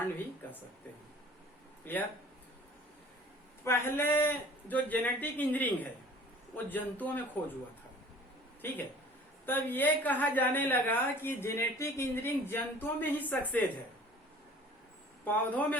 भी कर सकते हैं। क्लियर। पहले जो जेनेटिक इंजीनियरिंग है वो जंतुओं में खोज हुआ था, ठीक है। तब ये कहा जाने लगा कि जेनेटिक इंजीनियरिंग जंतुओं में ही सक्सेस है, पौधों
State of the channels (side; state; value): both; normal; correlation 0.48